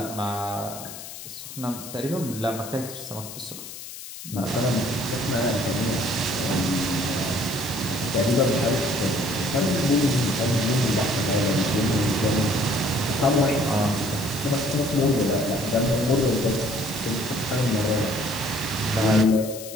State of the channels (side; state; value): left; noise; hiss, 12 dB below the sound